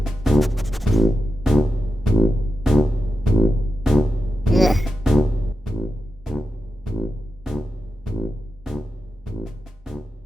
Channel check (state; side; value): normal; both; correlation 0.89